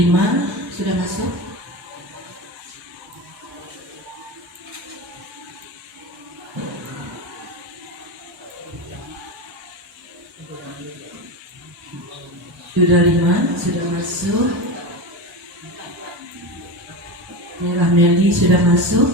sudah masuk. Sudah 5 sudah masuk. Merah Meli sudah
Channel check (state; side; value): normal; both; correlation 0.22